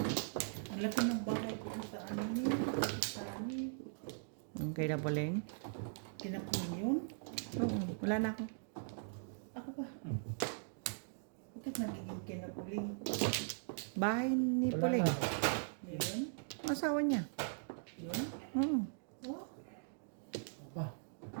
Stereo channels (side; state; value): left; silent; digital silence